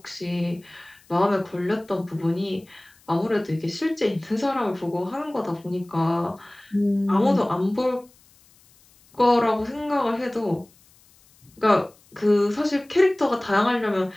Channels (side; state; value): left; noise; hiss, 30 dB below the sound